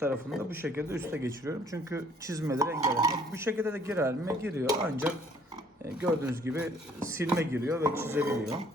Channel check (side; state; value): both; normal; correlation 0.60